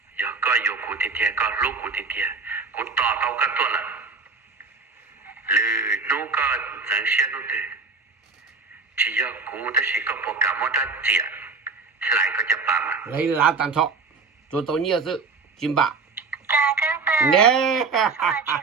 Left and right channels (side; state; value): left; quieter; 4.5 dB